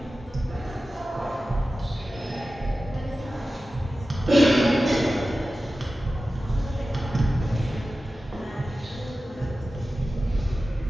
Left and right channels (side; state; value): both; normal; correlation 0.94